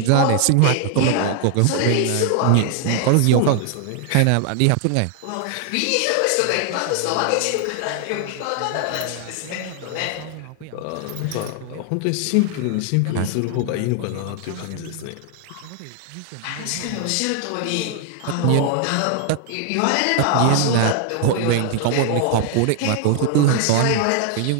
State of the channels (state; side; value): different; both; correlation 0.00